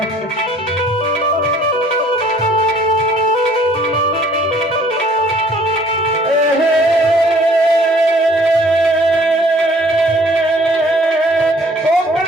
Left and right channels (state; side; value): normal; both; correlation 0.57